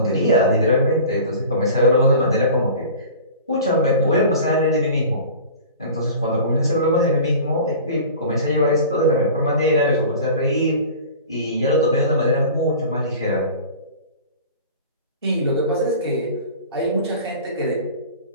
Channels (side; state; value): both; inverted; correlation -0.39